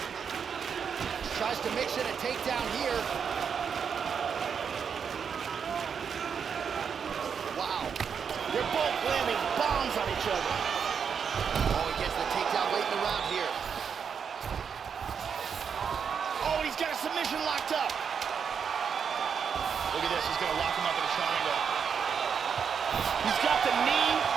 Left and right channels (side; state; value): left; quieter; 6.8 dB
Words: tries to mix in a takedown here. Wow. They're both landing bombs on each other. Oh, he gets the takedown late in the round here. Oh, he's got a submission locked up. Look at this, he's gonna lock him up in a triangle. He's got the knee